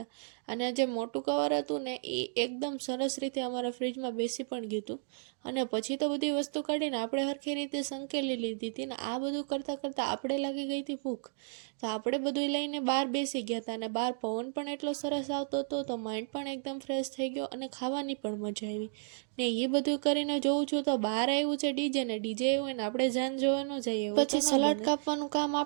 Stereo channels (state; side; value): silent; left; digital silence